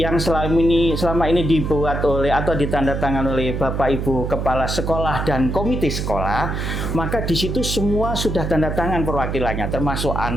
selama ini dibuat oleh atau ditandatangani oleh Bapak Ibu Kepala Sekolah dan Komite Sekolah, maka di situ semua sudah tanda tangan perwakilannya, termasuk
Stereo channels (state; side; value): noise; right; hum, 3 dB below the sound